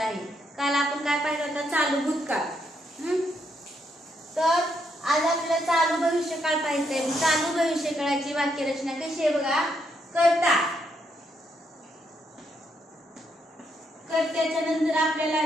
आहे. काल आपण काय पाहिलं होतं, चालू भूतकाळ. तर आज आपल्याला चालू भविष्यकाळ पाहायचा आहे. चालू भविष्यकाळाची वाक्यरचना कशी आहे बघा. कर्ता, कर्त्याच्या नंतर आपल्याला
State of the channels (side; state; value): both; normal; correlation 0.77